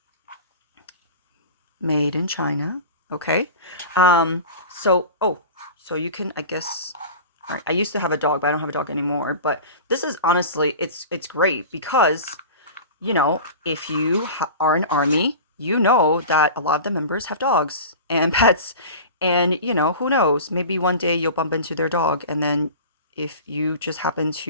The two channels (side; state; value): both; inverted; correlation -0.34